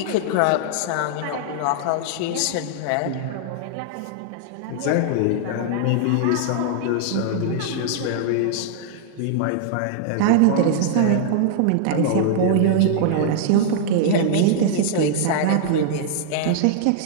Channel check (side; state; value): both; different; correlation -0.01